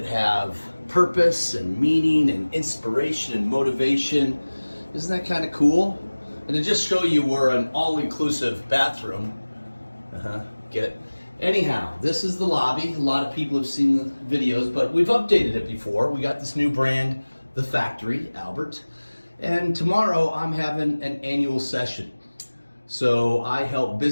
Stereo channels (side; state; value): both; inverted; correlation -1.00